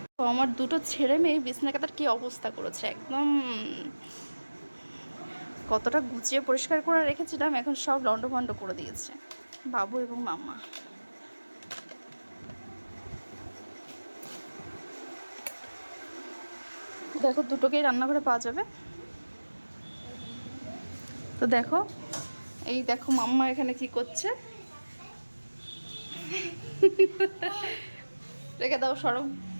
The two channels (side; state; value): both; inverted; correlation -1.00